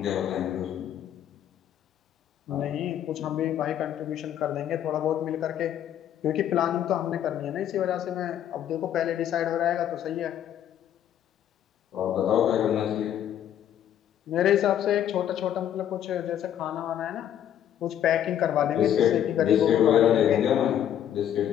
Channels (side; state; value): right; quieter; 10.4 dB